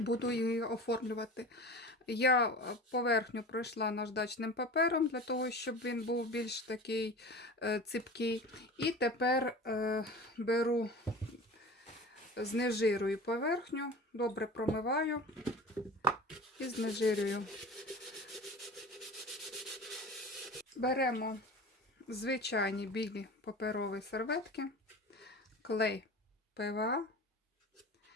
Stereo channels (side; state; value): both; normal; correlation 0.36